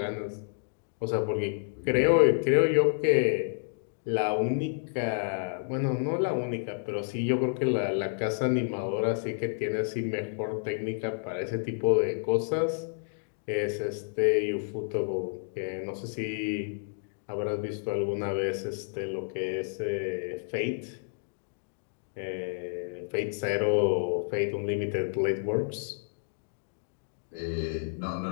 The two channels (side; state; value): right; silent; digital silence